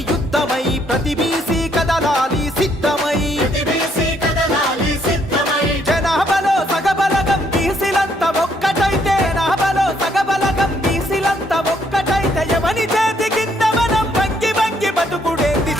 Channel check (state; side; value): normal; both; correlation 0.70